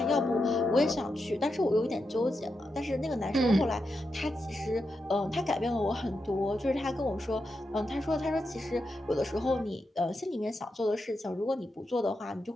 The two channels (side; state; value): both; normal; correlation 0.86